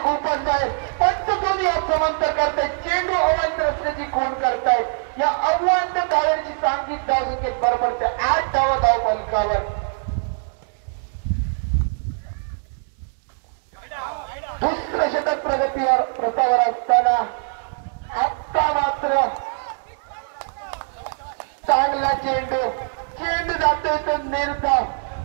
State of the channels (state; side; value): silent; left; digital silence